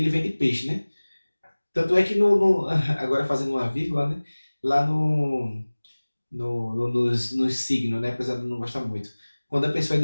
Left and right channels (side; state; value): both; inverted; correlation -1.00